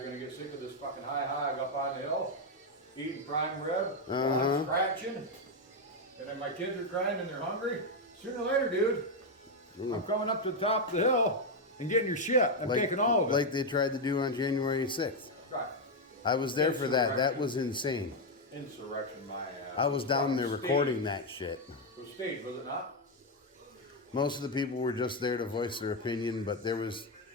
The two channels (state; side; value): normal; both; correlation 0.04